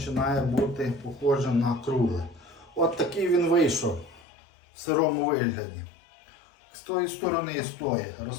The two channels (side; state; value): right; drops out; at 4.2 s